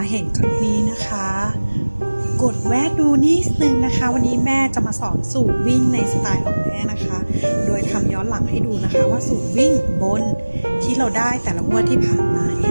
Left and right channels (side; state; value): both; inverted; correlation -1.00